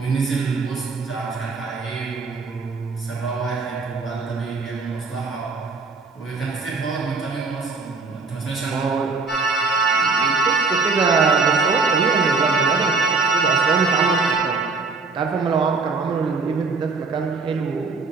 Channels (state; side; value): quieter; left; 4.2 dB